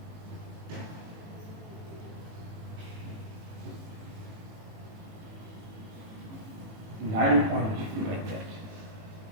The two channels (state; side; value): late; left; 18 ms